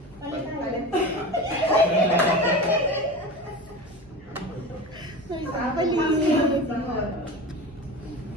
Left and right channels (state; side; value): normal; both; correlation 0.30